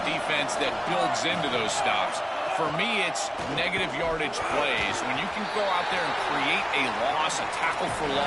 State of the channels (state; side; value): identical; both; correlation 1.00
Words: defense that builds into those stops. For me, it's negative yardage plays. When you can go out there and create a loss, a tackle for